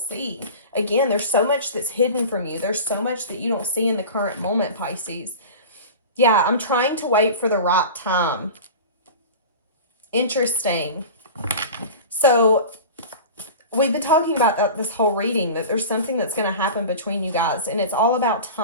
Again, there's so much that's hidden from you. There's so much that you don't see in the current moment, Pisces. Yeah, I'm trying to wait for the right time. Interesting. So we've been talking about that this whole reading, that there's something that's going to happen between you guys. And it's all about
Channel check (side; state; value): both; inverted; correlation -0.34